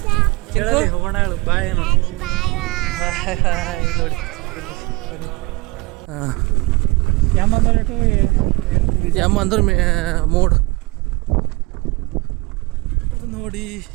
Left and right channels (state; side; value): quieter; left; 24.1 dB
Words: ಹೋಗೋಣ. ಹೇಳು ಬಾಯ್ ನೋಡಿ. ಯಮ್ಮ ಅಂದ್ರೆ ಮೋಡ್ ನೋಡಿ.